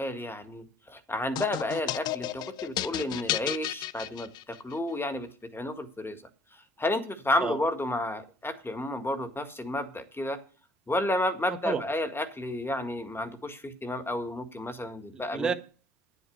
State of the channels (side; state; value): both; normal; correlation 0.61